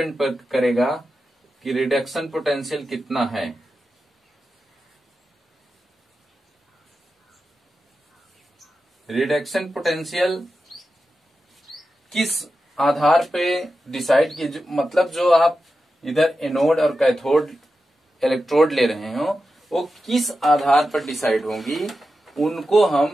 पर करेगा कि रिडक्शन पोटेंशियल कितना है। रिडक्शन पोटेंशियल किस आधार पे डिसाइड कीजिए, मतलब जो आप इधर एनोड और कैथोड इलेक्ट्रोड ले रहे हो वो किस आधार पर डिसाइड होंगी, उनको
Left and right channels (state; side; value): normal; both; correlation 0.91